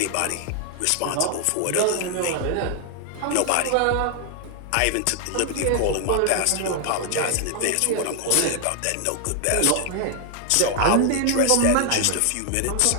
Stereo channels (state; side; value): different; both; correlation 0.00